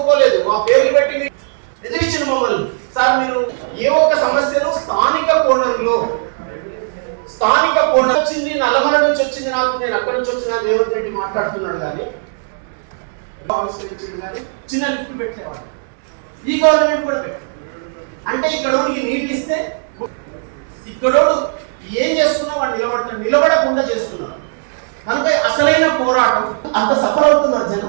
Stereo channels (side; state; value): left; silent; 68 dB below the other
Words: మా పేర్లు పెట్టి ఎదిరించిన మమ్మల్ని. సార్ మీరు ఏ ఒక్క సమస్యను స్థానిక కోణంలో వచ్చింది, నల్లమల నుంచి వచ్చింది, నాకు నేను అక్కడి నుంచి వచ్చిన రేవంత్ రెడ్డి మాట్లాడుతున్నాడు కానీ చిన్న లిఫ్ట్ పెట్టేవాడు. ఈ గవర్నమెంట్ కూడా పెట్టారు. అంటే ఇక్కడోడికి నీళ్ళు ఇస్తే ఇక్కడోడు ఏం చేస్తున్నా వాడు నిలబడకుండా చేస్తున్నారు. కనుక అసలైన పోరాటం అంత సఫర్ అవుతున్నారు